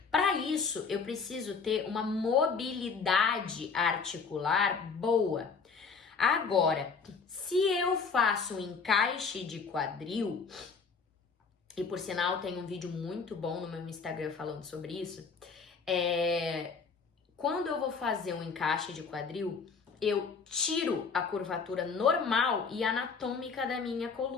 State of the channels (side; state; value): right; quieter; 5.2 dB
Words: Para isso, eu preciso ter uma mobilidade articular boa. Agora, se eu faço um encaixe de quadril, e por sinal tem um vídeo muito bom no meu Instagram falando sobre isso, quando eu vou fazer um encaixe de quadril, eu tiro a curvatura normal e anatômica da minha